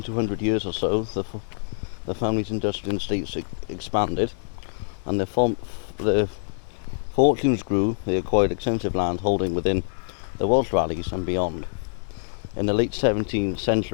200 years or so, the family's industrial estates expanded, and their fortunes grew. They acquired extensive land holding within the Welsh valleys and beyond. In the late 17th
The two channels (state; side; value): silent; right; 57 dB below the other